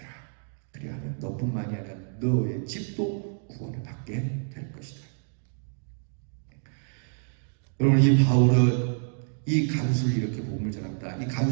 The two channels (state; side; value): silent; left; digital silence